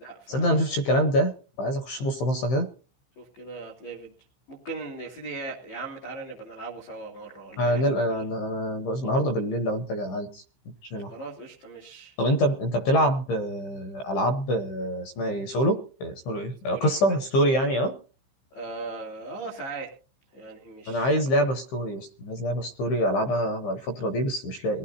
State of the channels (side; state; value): right; late; 15 ms